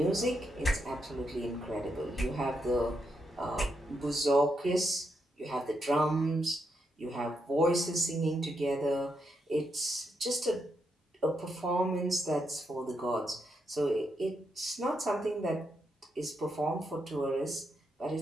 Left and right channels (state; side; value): normal; both; correlation 0.81